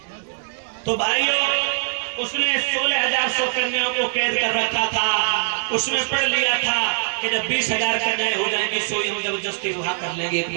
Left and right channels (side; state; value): left; silent; digital silence